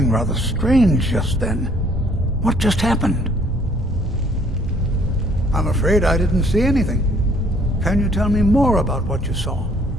rather strange just then. What just happened? I'm afraid I didn't see anything. Can you tell me more about what you saw?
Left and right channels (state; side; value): normal; both; correlation 0.61